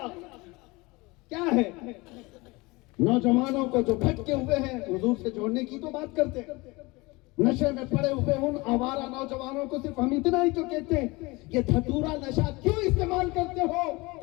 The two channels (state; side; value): quieter; right; 23.8 dB